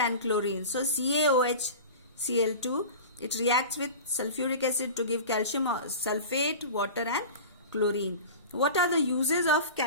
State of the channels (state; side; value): inverted; both; correlation -0.33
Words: chlorine. So CaOHCl2, it reacts with sulfuric acid to give calcium sulfate, water, and chlorine. What are the uses of